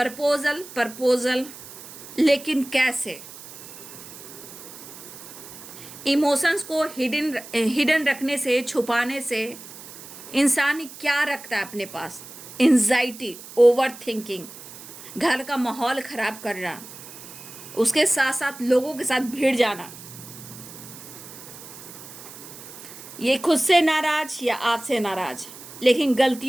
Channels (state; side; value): noise; right; hiss, 15 dB below the sound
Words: प्रपोजल, लेकिन कैसे? इमोशंस को हिडन रखने से, छुपाने से इंसान क्या रखता है अपने पास? एंजाइटी, ओवर थिंकिंग, घर का माहौल ख़राब करना, उसके साथ साथ लोगों के साथ भिड़ जाना। ये खुद से नाराज या आपसे नाराज, लेकिन